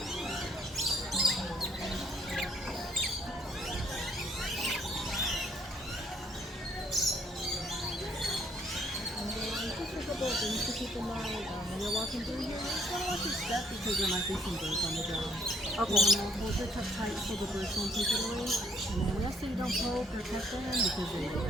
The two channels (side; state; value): both; normal; correlation 0.66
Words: Things to keep in mind when you're walking through here. You just want to watch your step because there might be some birds on the ground. Okay. You want to hold your cup tight so the birds won't take it away. And then we ask that you don't poke or cut them because they will